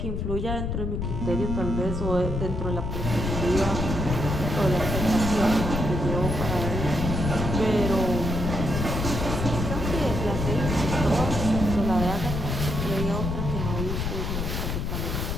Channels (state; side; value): noise; left; rumble, 2 dB below the sound